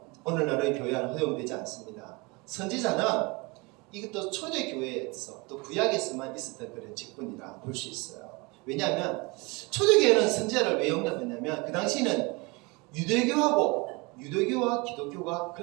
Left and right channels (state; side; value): quieter; left; 26.8 dB